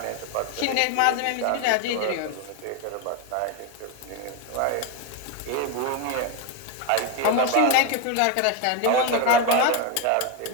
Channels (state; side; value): different; both; correlation 0.02